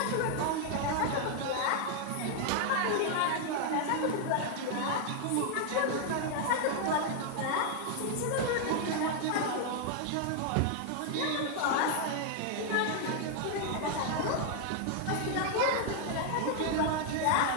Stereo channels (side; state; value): both; different; correlation 0.00